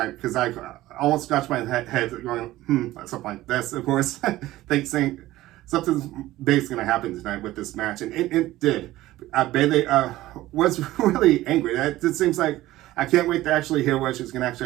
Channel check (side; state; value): left; quieter; 16.2 dB